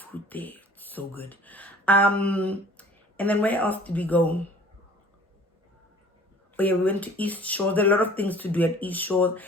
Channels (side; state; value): both; normal; correlation 0.49